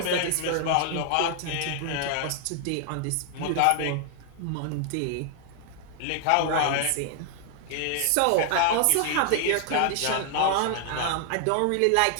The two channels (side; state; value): both; different; correlation 0.00